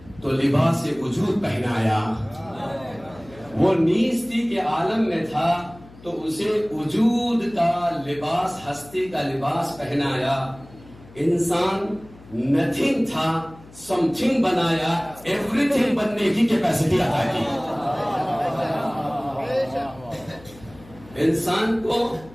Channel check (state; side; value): noise; left; hum, 22 dB below the sound